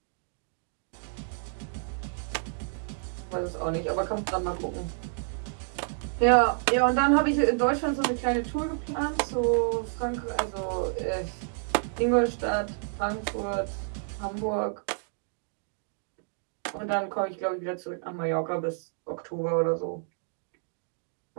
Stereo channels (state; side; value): silent; left; digital silence